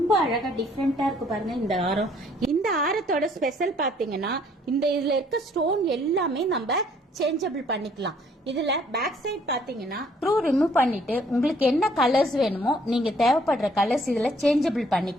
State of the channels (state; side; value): normal; both; correlation 0.63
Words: அழகா டிஃப்ரெண்டா இருக்கு பாருங்க. இந்த ஆரம், இந்த ஆரத்தோட ஸ்பெஷல் பாத்தீங்கன்னா இந்த இதுல இருக்க ஸ்டோன் எல்லாமே நம்ம சேஞ்சபிள் பண்ணிக்கலாம். இதுல பேக் சைட் பாத்தீங்கன்னா ஸ்க்ரூ ரிமூவ் பண்ணிட்டு உங்களுக்கு என்ன கலர்ஸ் வேணுமோ நீங்க தேவைப்படுற கலர்ஸ் இதுல சேஞ்சபிள்